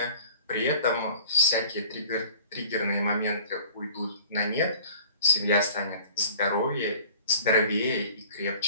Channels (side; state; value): both; inverted; correlation -0.48